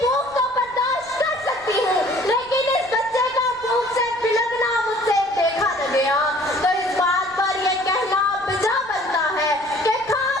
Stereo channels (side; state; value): right; noise; rumble, 25 dB below the sound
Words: کو برداشت کر سکتی ہوں، لیکن اس بچے کا بھوک سے بلکنا مجھ سے دیکھا نہ گیا. تو اس بات پر یہ کہنا بجا بنتا ہے کہ